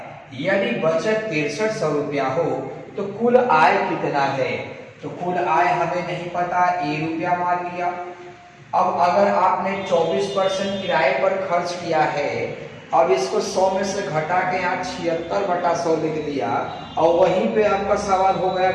यदि बचत 6300 रुपया हो तो कुल आय कितना है? तो कुल आय हमें नहीं पता, ₹1 मान लिया। अब अगर आपने 24% किराए पर खर्च किया है, अब इसको 100 में से घटा के यहाँ 76/100 लिख दिया और वहीं पे आपका सवाल हो गया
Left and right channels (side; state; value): both; identical; correlation 1.00